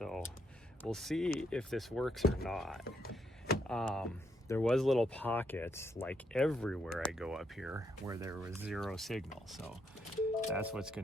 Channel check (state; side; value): normal; both; correlation 0.77